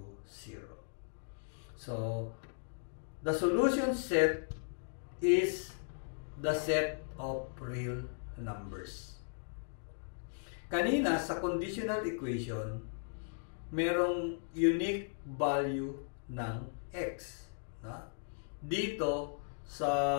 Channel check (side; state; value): right; silent; digital silence